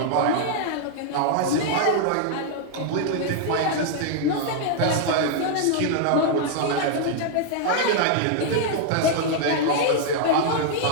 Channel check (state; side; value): different; both; correlation 0.00